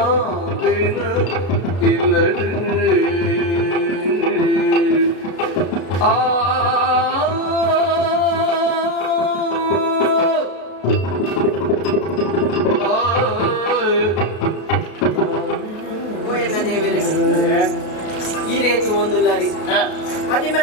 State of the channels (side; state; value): right; late; 33 ms